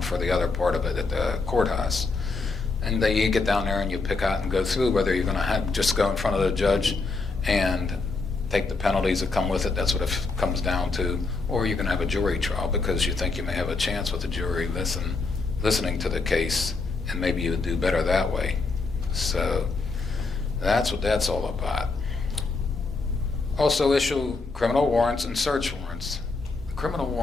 for the other part of it at the courthouse. And then you get down there and you pick out and go through whether you're going to just go in front of the judge and take the penalties that come with it. That's what it comes down to. Or you're going to have a jury trial because you think you may have a chance with the jury listening to the case, and maybe you would do better that way. So that's what that's all about. Also issue criminal warrants and search warrants. The criminal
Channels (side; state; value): right; quieter; 3.9 dB